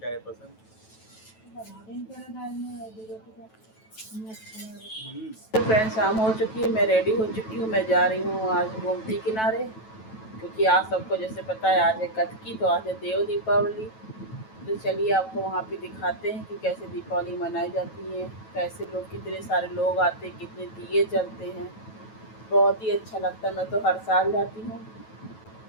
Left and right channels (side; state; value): right; late; 9.1 ms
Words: है पसंद। तो फ्रेंड, शाम हो चुकी है, मैं रेडी हो चुकी हूँ। मैं जा रही हूँ आज गोमती किनारे, क्योंकि आज सबको जैसे पता है आज है कतकी, तो आज है देव दीपावली। तो चलिए आपको वहाँ पे दिखाते हैं कि कैसे दीपावली मनाई जाती है, कैसे लोग, कितने सारे लोग आते हैं, कितने दिए जलते हैं। बहुत ही अच्छा लगता है। मैं तो हर साल जाती हूँ।